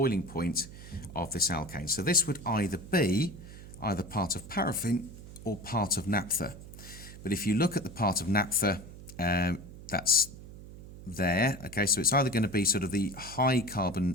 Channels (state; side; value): noise; right; hum, 15 dB below the sound